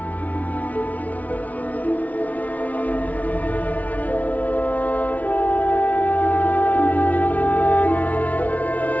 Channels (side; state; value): right; late; 0.071 ms